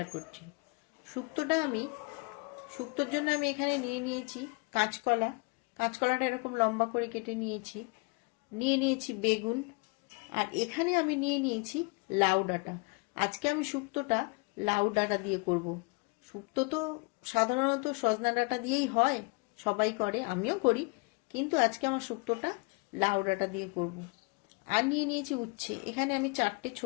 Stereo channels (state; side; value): quieter; right; 30.6 dB